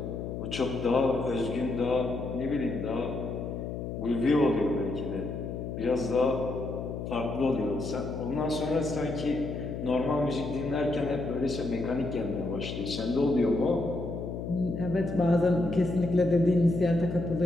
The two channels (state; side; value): noise; left; hum, 6 dB below the sound